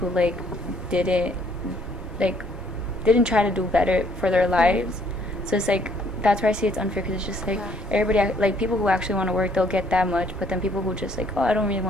like didn't try to do better for their lives. So it's like that's where I see it's unfair, because it's just like everybody, like people who actually want to work, they'll get that much, but then people who just like, oh, I don't really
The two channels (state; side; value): normal; both; correlation 0.64